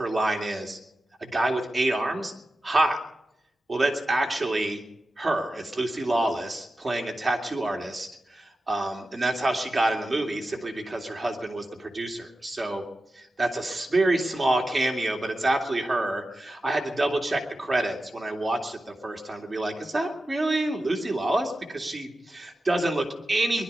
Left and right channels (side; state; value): both; normal; correlation 0.93